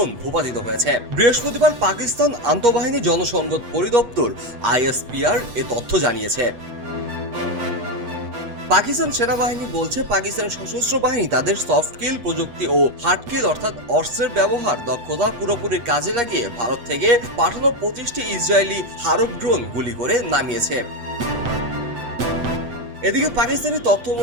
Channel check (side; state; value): left; late; 7.9 ms